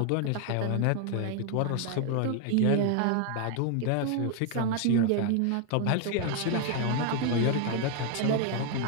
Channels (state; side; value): different; both; correlation 0.01